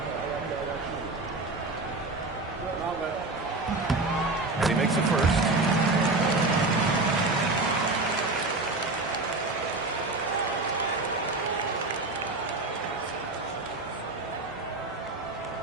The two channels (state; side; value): quieter; left; 3.2 dB